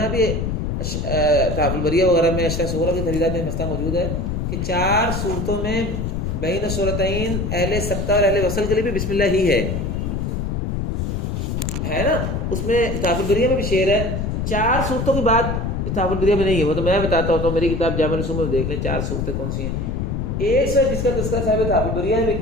بھی تحف البریہ وغیرہ میں اشرح سورہ کی خریدات میں مسئلہ موجود ہے کہ 4 صورتوں میں بین سورتین اہل سکتہ اور اہل وصل کے لیے بھی بسم اللہ ہی ہے نا. اس میں تحف البریہ میں بھی شعر ہے، 4 صورتوں کی بات تحف البریہ میں نہیں ہے، وہ تو میں بتاتا ہوں، تو میری کتاب جامع الرسوم میں دیکھ لیں 4 صورتیں کون سی ہیں. ایک سے جس کا تذکرہ صاحب تحف البریہ میں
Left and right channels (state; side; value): noise; left; rumble, 2 dB below the sound